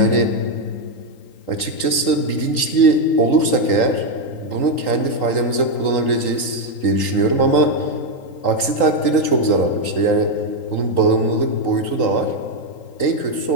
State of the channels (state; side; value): late; right; 3.8 ms